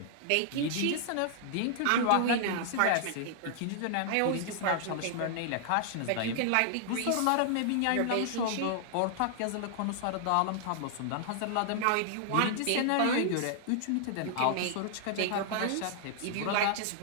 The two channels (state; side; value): different; both; correlation -0.01